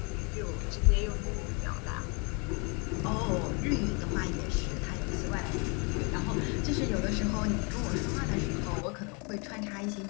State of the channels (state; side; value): quieter; right; 32.8 dB